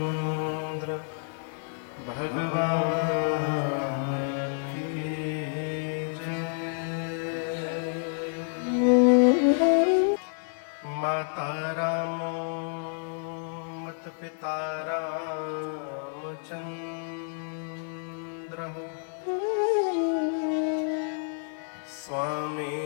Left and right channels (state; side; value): silent; right; digital silence